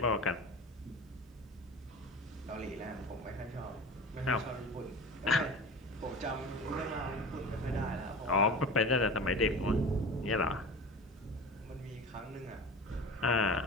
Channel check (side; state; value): both; normal; correlation 0.34